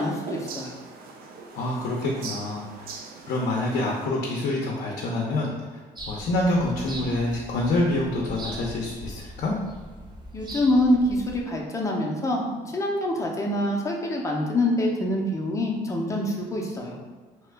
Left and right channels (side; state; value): both; normal; correlation 0.61